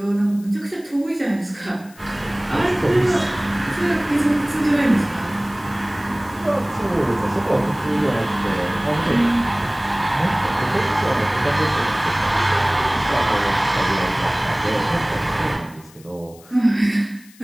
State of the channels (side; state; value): left; noise; hiss, 25 dB below the sound